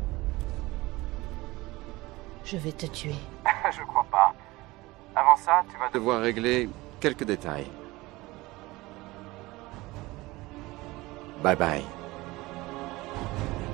Je vais te tuer. Je crois pas. Avant ça, tu vas devoir régler quelques détails. Bye bye.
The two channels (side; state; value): left; quieter; 20.6 dB